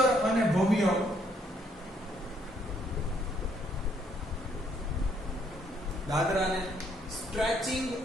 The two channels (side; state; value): both; normal; correlation 0.69